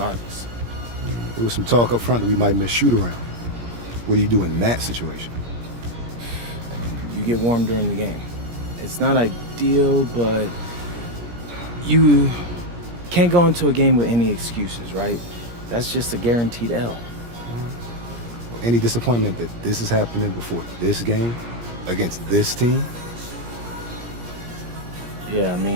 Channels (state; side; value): late; left; 17 ms